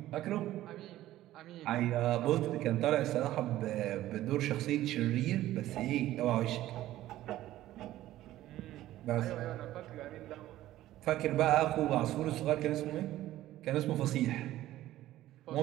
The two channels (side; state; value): left; quieter; 14.6 dB